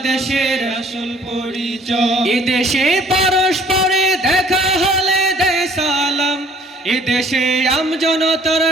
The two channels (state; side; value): normal; both; correlation 0.56